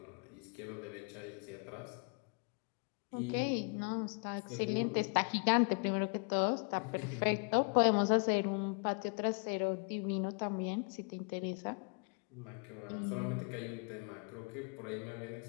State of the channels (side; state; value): right; quieter; 36.9 dB